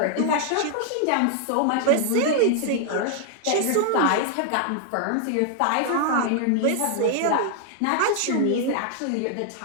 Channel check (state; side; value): different; both; correlation 0.00